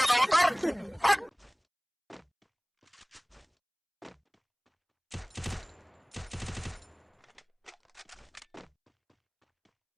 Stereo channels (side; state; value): both; identical; correlation 1.00